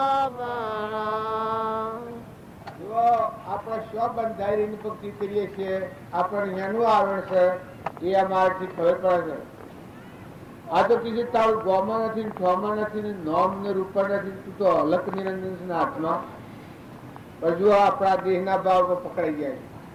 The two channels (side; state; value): both; identical; correlation 1.00